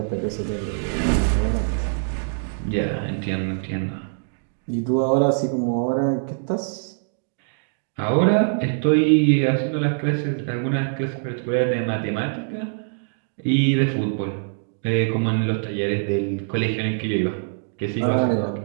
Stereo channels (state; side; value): silent; left; digital silence